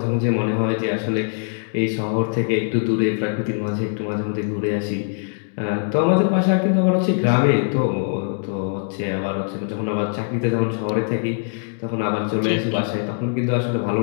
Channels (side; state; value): right; silent; 64 dB below the other